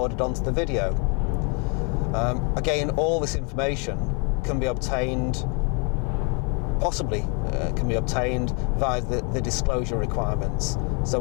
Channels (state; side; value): quieter; right; 34.4 dB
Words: onto the video. Again, all this information can be obtained, via the disclosure requirements. So